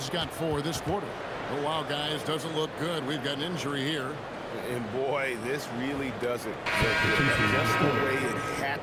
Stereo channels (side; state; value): both; identical; correlation 1.00